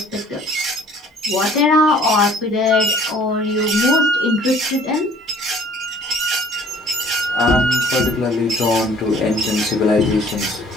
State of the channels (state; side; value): normal; both; correlation 0.54